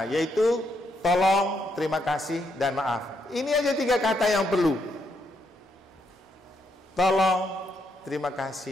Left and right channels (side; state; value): both; normal; correlation 0.77